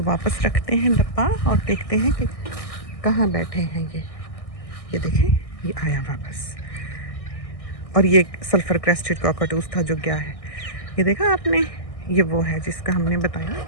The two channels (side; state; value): right; late; 1.6 ms